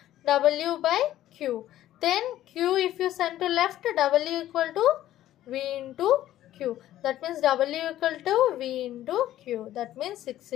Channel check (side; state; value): right; quieter; 13.3 dB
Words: W by Q. Then Q if you send to left, W equal to V into Q. That means W equal to V into Q. That means 6